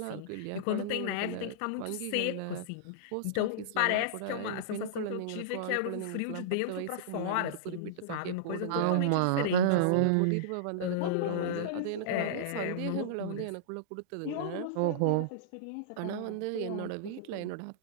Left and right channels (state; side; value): different; both; correlation -0.02